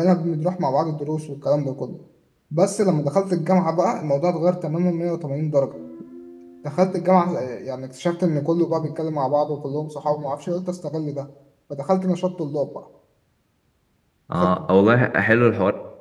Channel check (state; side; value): identical; both; correlation 1.00